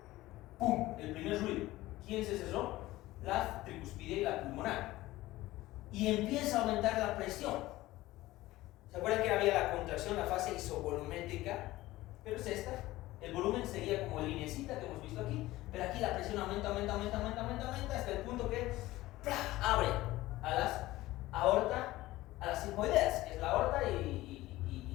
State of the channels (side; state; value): right; quieter; 17.4 dB